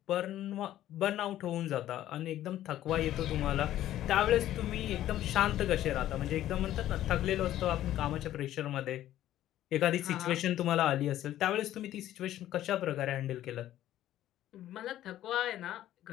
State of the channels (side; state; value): right; quieter; 13.0 dB